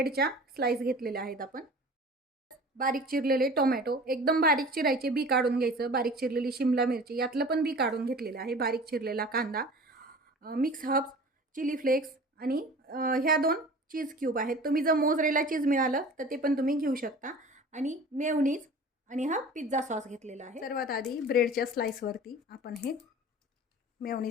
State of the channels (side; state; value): both; normal; correlation 0.41